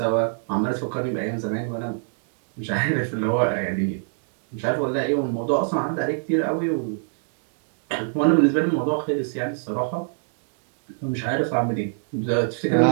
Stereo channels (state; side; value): silent; left; digital silence